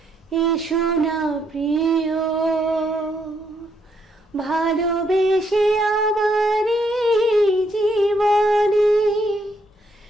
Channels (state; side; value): normal; both; correlation 0.74